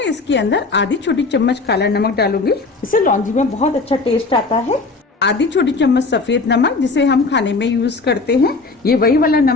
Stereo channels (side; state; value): right; quieter; 3.8 dB